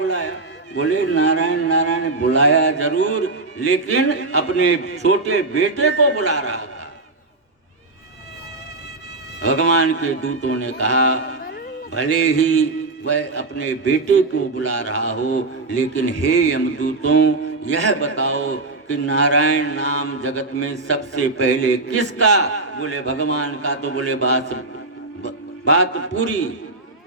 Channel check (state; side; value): quieter; left; 3.4 dB